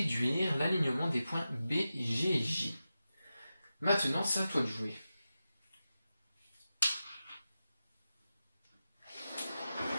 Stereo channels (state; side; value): inverted; both; correlation -0.92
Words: l'alignement des points B, G et J. Maintenant, c'est à toi de jouer.